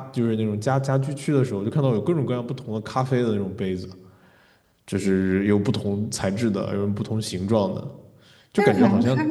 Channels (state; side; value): identical; both; correlation 1.00